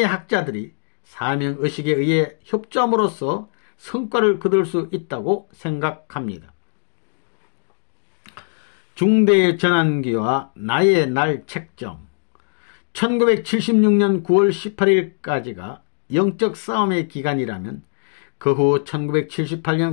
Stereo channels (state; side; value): silent; right; digital silence